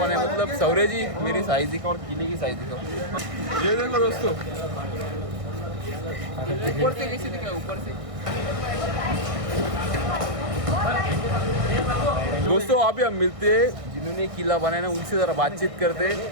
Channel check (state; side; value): late; left; 1.6 ms